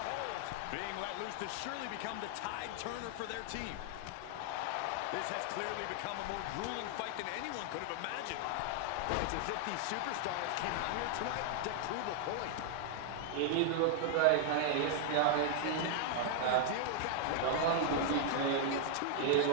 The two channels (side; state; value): both; different; correlation 0.00